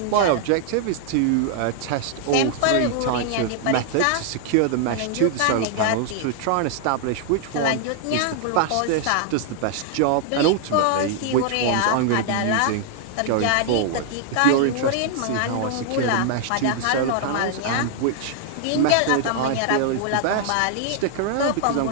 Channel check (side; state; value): both; different; correlation 0.00